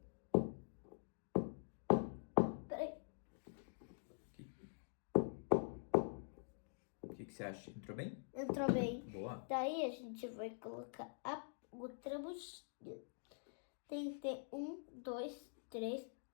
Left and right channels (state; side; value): silent; right; digital silence